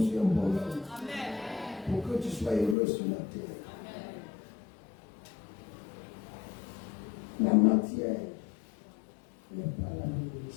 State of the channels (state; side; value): drops out; right; at 2.8 s